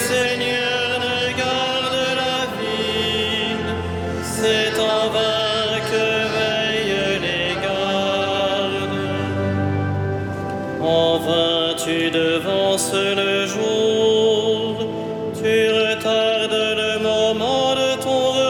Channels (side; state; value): both; identical; correlation 1.00